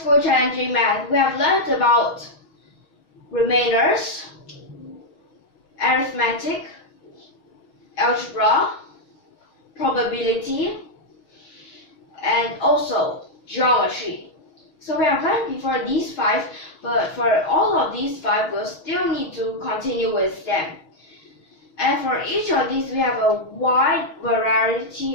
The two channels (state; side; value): late; right; 6.3 ms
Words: Challenging Math, we have learned about remainders, arithmetic, algebra, probability, and also geometry. So we have learned before these 5, but for all of these 5, we'll still need to continue with them. And for each of these, we have a wide